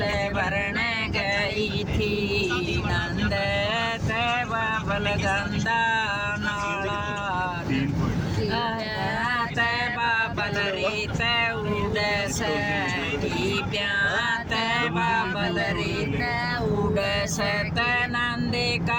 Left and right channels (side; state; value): both; identical; correlation 1.00